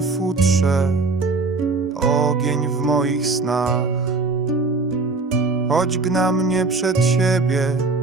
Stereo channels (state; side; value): quieter; left; 3.8 dB